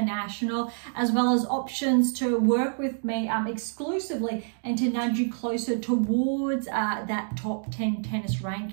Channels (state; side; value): silent; left; digital silence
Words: as well as options to work with me exclusively and to nudge you closer towards that top 10 tennis